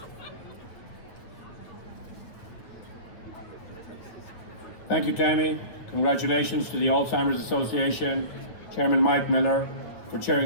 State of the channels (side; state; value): right; late; 9.3 ms